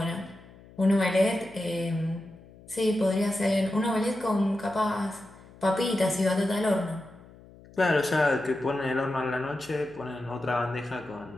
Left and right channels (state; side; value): noise; left; hum, 22 dB below the sound